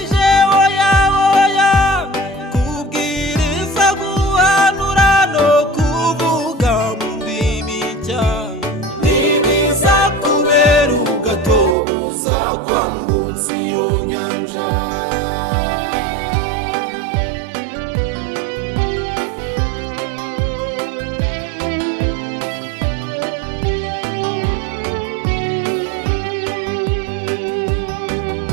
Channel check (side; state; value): left; drops out; at 11.8 s